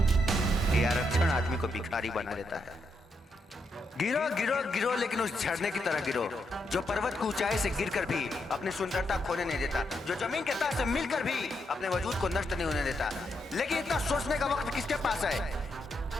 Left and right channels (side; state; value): both; normal; correlation 0.80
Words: ये आरक्षण आदमी को भिखारी बना देता है। गिरो गिरो गिरो, लेकिन उस झरने की तरह गिरो जो पर्वत की ऊंचाई से गिरकर भी अपनी सुंदरता खोने नहीं देता, जो जमीन के तह से मिलकर भी अपने वजूद को नष्ट नहीं होने देता। लेकिन इतना सोचने का वक्त किसके पास है?